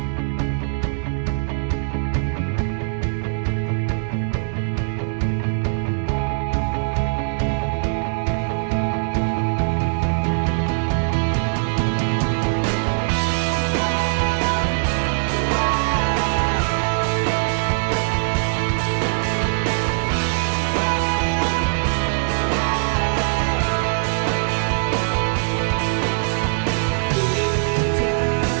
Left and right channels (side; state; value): left; silent; 65 dB below the other